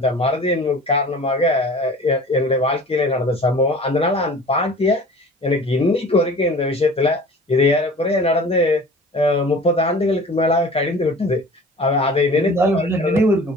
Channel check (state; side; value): normal; both; correlation 0.43